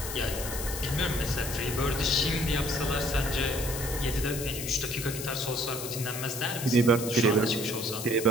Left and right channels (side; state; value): left; noise; hiss, 7 dB below the sound